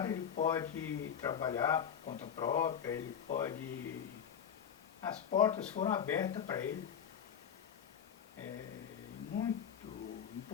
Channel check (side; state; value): right; quieter; 8.2 dB